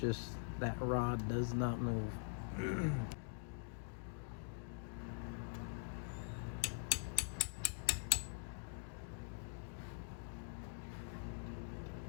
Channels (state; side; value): silent; right; digital silence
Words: just that rod does not move.